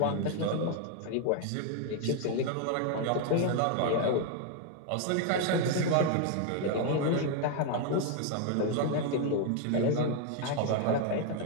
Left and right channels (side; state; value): both; different; correlation 0.01